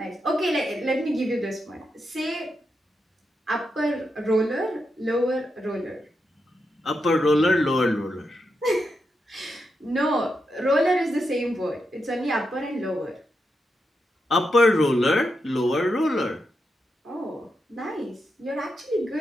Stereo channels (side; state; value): both; normal; correlation 0.85